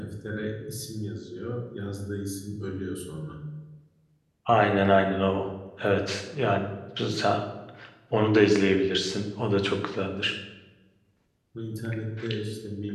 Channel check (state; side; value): identical; both; correlation 1.00